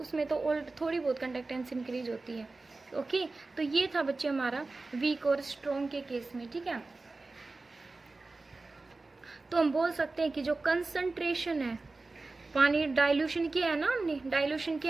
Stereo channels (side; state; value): left; quieter; 3.5 dB